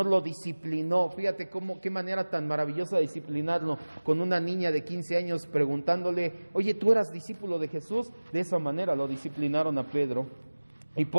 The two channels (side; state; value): both; inverted; correlation -1.00